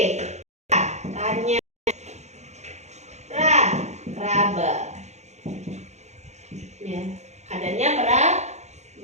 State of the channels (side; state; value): left; late; 0.33 ms